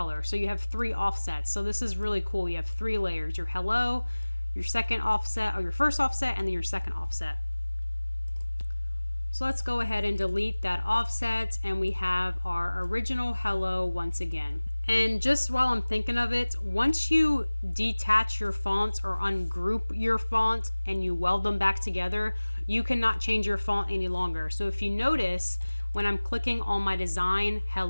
So you have 3 offsets. So this is really cool. You have 3 layers, your hello, your second offset, or your first offset, and then your second offset. So let's go ahead and delete that offset, and we have our original hello once again. And just while I'm thinking of it, once you detach your fonts or ungroup your font and you weld them back together, you cannot change your font any longer. So if you notice, when I'm clicking on my design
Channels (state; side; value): inverted; both; correlation -1.00